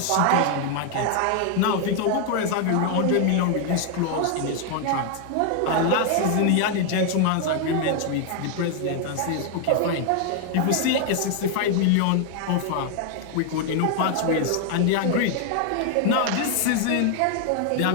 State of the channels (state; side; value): different; both; correlation 0.00